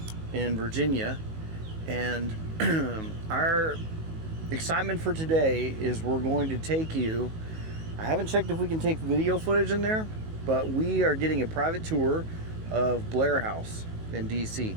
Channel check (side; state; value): left; late; 19 ms